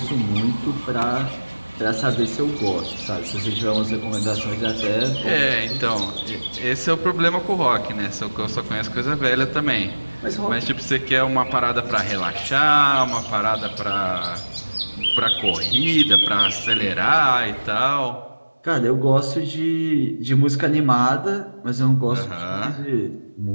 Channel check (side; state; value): both; inverted; correlation -1.00